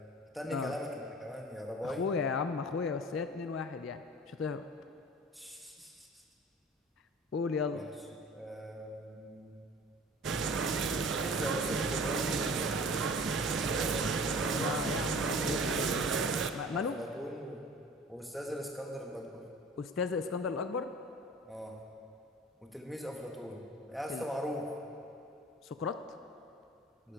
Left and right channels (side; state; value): both; normal; correlation 0.43